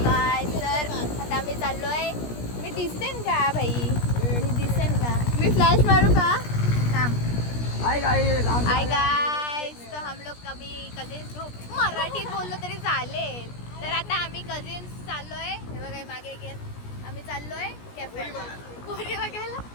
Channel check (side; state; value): right; late; 17 ms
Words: काय सर आता आम्ही चाललोय. मी दिसेन का भाई? मी दिसेन का? मी फ्लॅश मारू का? थांब. हाय गाइस तो हम लोग कभी कजिन्स ग्रुप मराठीत बोललो तरी चालेल. तर आता आम्ही कजिन्स चाललोय. हे बघा मागे घेत आम्ही चाललोय कॅफेला. पोरी बघायला